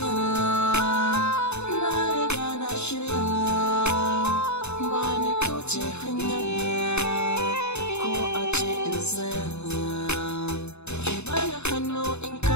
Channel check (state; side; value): late; right; 0.81 ms